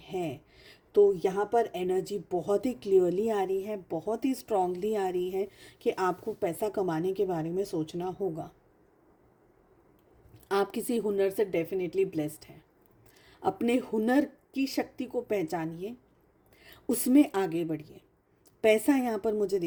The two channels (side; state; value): both; identical; correlation 1.00